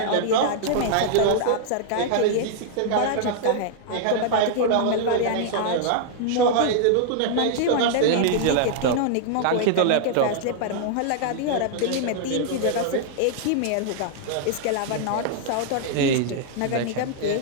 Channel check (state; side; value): different; both; correlation -0.01